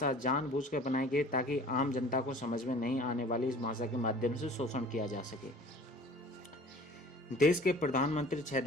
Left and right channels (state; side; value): normal; both; correlation 0.47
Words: जानबूझकर बनाई गई ताकि आम जनता को समझ में नहीं आने वाली इस भाषा के माध्यम से शोषण किया जा सके। देश के प्रधानमंत्री 6